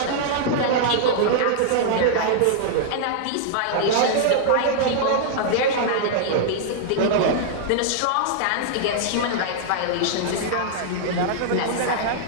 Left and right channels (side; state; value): both; different; correlation -0.01